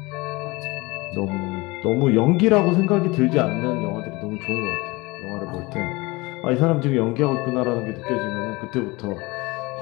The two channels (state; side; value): quieter; right; 23.5 dB